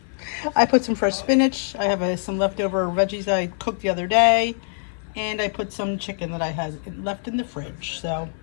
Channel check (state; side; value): silent; right; 56 dB below the other